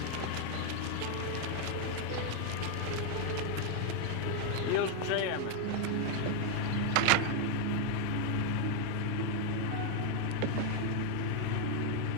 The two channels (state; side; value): different; both; correlation 0.00